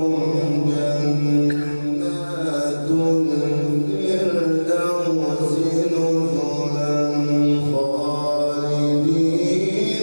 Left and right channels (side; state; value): both; inverted; correlation -1.00